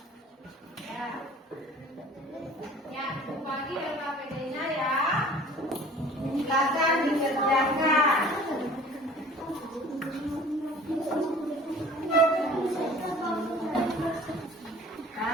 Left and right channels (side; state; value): both; normal; correlation 0.47